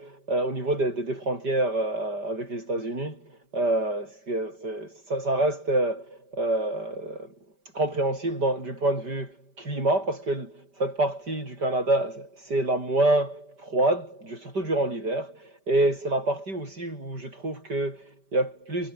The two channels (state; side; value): late; left; 5.1 ms